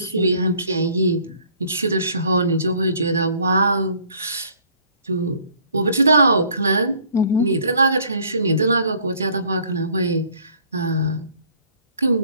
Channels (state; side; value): inverted; both; correlation -0.58